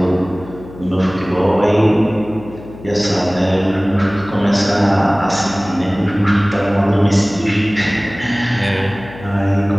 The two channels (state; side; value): noise; left; hum, 17 dB below the sound